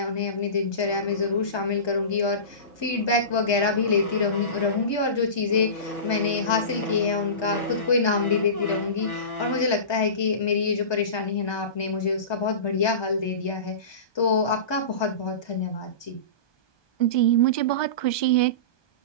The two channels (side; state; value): right; late; 1.2 ms